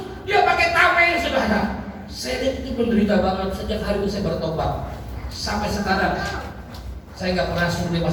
dia pakai tameng, saudara. Saya lihat itu menderita banget. Sejak hari itu saya bertobat. Sampai sekarang saya nggak pernah suruh dia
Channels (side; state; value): both; identical; correlation 1.00